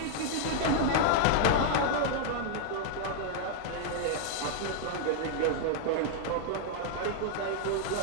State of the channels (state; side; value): different; both; correlation -0.01